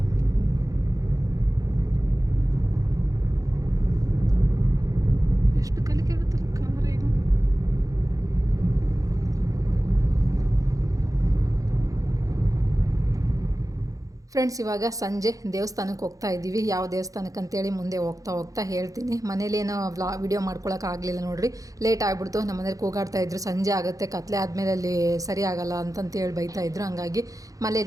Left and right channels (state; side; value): late; left; 0.17 ms